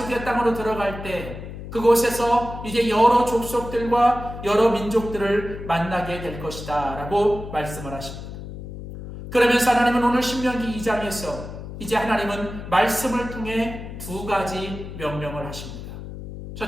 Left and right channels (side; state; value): left; noise; hum, 10 dB below the sound